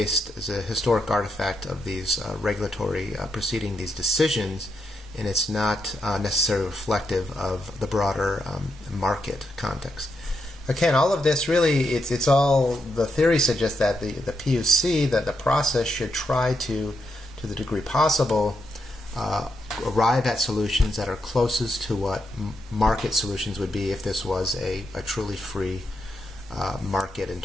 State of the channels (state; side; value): normal; both; correlation 0.82